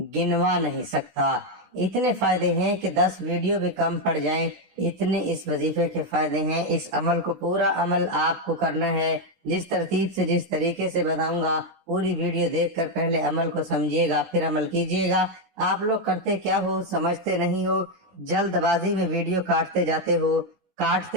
گنوا نہیں سکتا۔ اتنے فائدے ہیں کہ 10 ویڈیو بھی کم پڑ جائیں، اتنے اس وظیفے کے فائدے ہیں۔ اس عمل کو، پورا عمل آپ کو کرنا ہے، جس ترتیب سے، جس طریقے سے بتاؤں گا، پوری ویڈیو دیکھ کر پہلے عمل کو سمجھیے گا، پھر عمل کیجیے گا۔ آپ لوگ کرتے کیا ہو، سمجھتے نہیں ہو، جلد بازی میں ویڈیو کاٹتے جاتے ہو،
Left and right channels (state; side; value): late; left; 16 ms